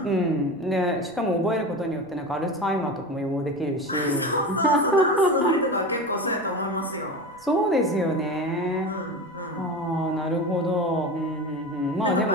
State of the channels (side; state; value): right; noise; rumble, 30 dB below the sound